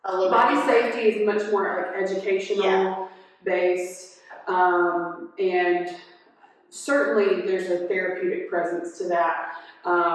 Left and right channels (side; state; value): both; identical; correlation 1.00